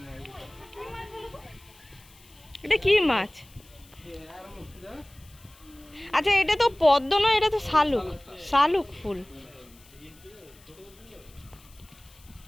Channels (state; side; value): noise; left; hiss, 26 dB below the sound